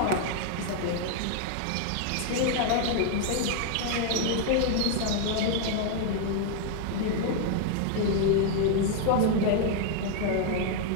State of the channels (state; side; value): different; both; correlation 0.00